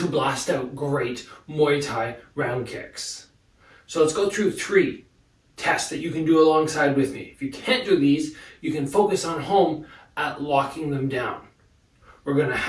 blast out great Muay Thai round kicks. So let's go through 3 tests that you can do alongside with me. If you can't do these, you can focus on home at locking them down. We're going to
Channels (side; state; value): both; identical; correlation 1.00